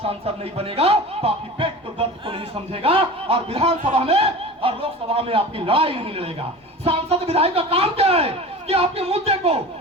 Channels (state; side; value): normal; both; correlation 0.35